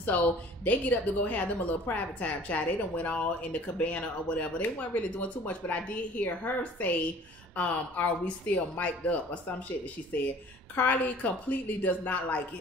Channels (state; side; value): normal; both; correlation 0.49